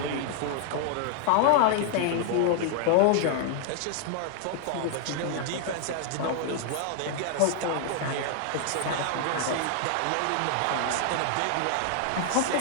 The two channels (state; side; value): different; both; correlation 0.00